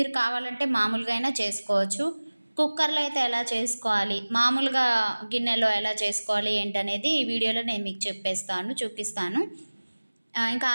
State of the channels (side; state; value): both; inverted; correlation -1.00